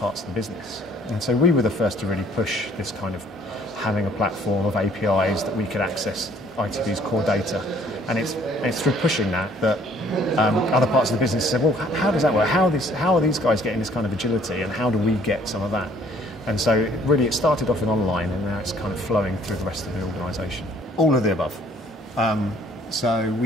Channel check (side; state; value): both; normal; correlation 0.59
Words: of the business. And so we were the first to really push this kind of having a platform of APIs that we could access ITV's core data. And it's through pushing that other parts of the business said, well, how does that work? How are these guys getting this kind of agility, and how do we get some of that? And so really it started off in online, and now it's kind of flowing through the rest of the organisation. All of the above. So